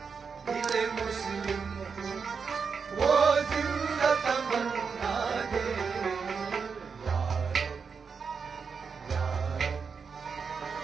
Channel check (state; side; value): quieter; left; 5.7 dB